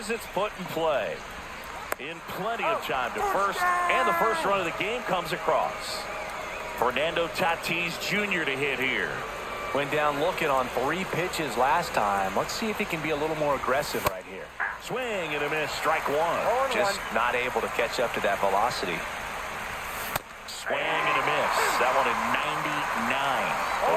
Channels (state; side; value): identical; both; correlation 1.00